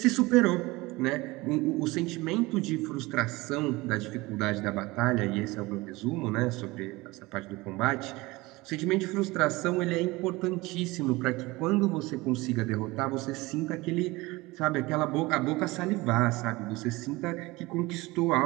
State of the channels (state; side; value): quieter; left; 21.7 dB